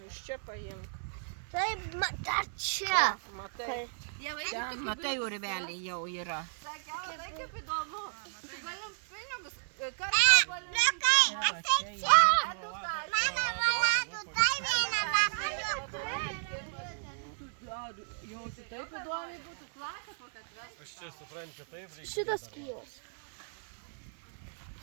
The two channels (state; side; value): silent; left; 55 dB below the other